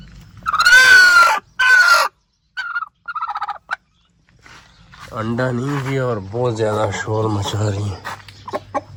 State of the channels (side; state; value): both; identical; correlation 1.00